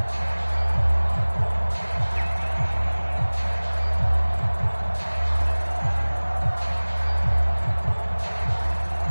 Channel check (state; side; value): inverted; both; correlation -1.00